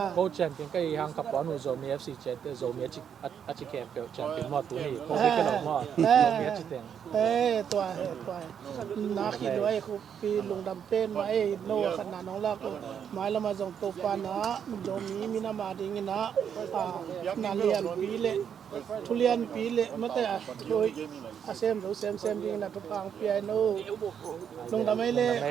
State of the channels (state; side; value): quieter; left; 8.1 dB